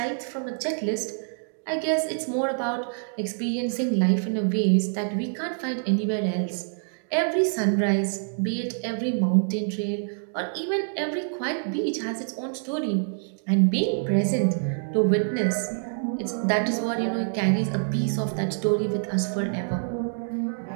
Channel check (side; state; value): left; silent; digital silence